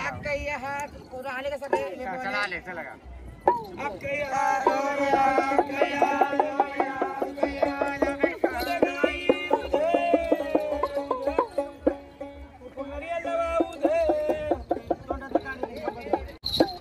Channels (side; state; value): both; identical; correlation 1.00